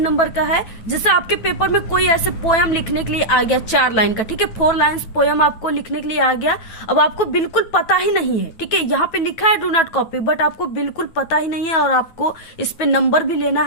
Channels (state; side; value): late; right; 9.1 ms